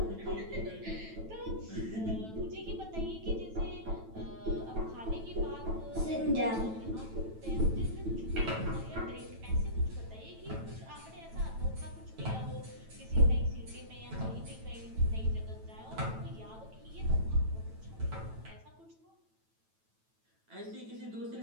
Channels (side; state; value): left; late; 9.1 ms